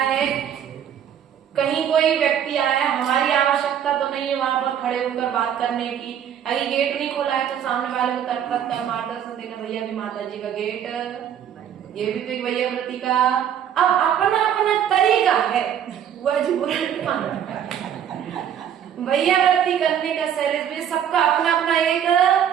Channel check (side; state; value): left; quieter; 9.3 dB